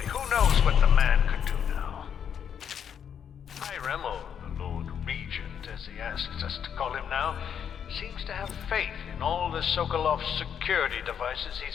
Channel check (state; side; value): quieter; right; 8.2 dB